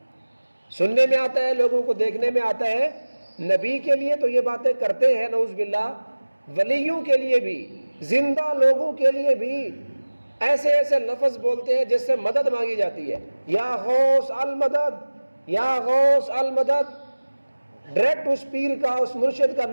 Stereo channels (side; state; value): both; inverted; correlation -1.00